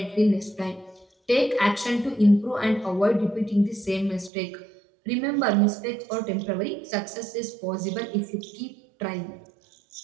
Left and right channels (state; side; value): drops out; left; at 4.3 s